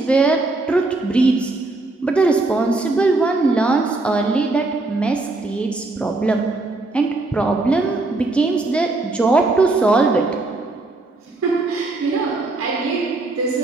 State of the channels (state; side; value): quieter; left; 3.1 dB